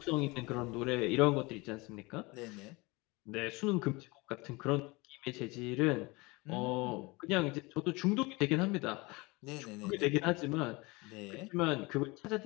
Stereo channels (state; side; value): quieter; right; 24.7 dB